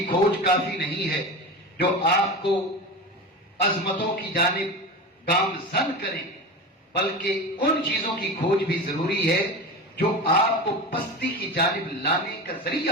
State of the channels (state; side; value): normal; both; correlation 0.27